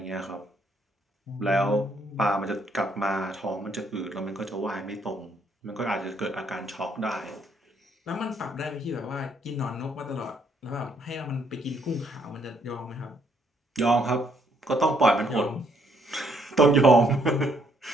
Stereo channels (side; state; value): both; normal; correlation 0.69